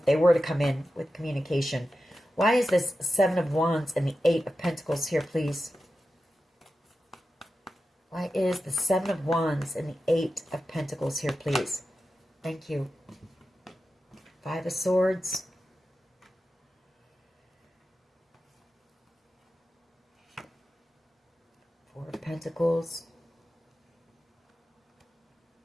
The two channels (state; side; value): normal; both; correlation 0.92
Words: they were to come in with communication. Why is this Seven of Wands and the Eight of Pentacles here, please? Why is the Seven of Wands and the Eight of Pentacles here, please? Thank you. Five of Swords. Four of Pentacles.